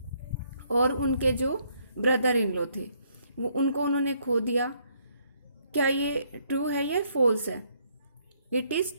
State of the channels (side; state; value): both; inverted; correlation -0.69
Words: और उनके जो ब्रदर इन लॉ थे, वो उनको उन्होंने खो दिया. क्या ये ट्रू है या फॉल्स है? It